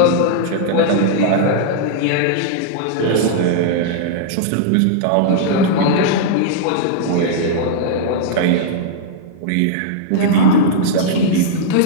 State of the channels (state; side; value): different; both; correlation -0.02